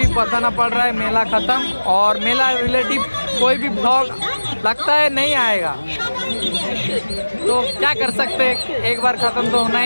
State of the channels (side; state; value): both; inverted; correlation -1.00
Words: बताना पड़ रहा है। मेला ख़त्म और मेला रिलेटिव कोई भी ब्लॉग लगता है नहीं आएगा, तो क्या कर सकते हैं, एक बार ख़त्म तो होना